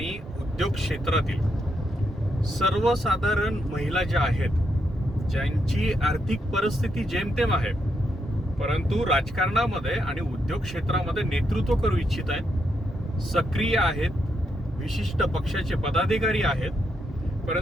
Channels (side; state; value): both; normal; correlation 0.80